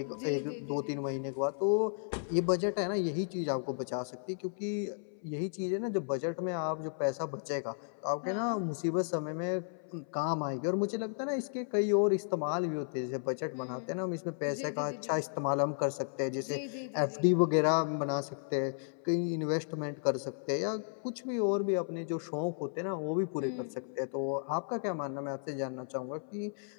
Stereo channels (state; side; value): silent; right; 55 dB below the other